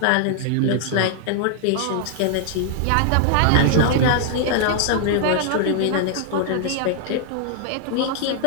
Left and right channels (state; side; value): different; both; correlation 0.00